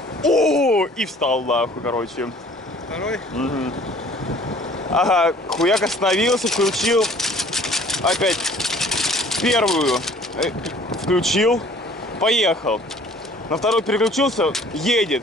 и встал, нахуй, короче. Второй? Угу. Ага, хуяк остановился, включил опять первую, включил, поехал. На второй переключился,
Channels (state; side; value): normal; both; correlation 0.53